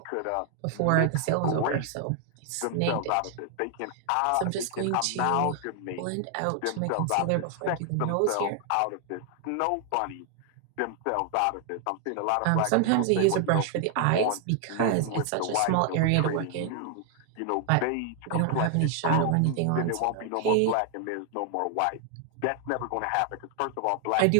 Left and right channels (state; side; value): different; both; correlation 0.00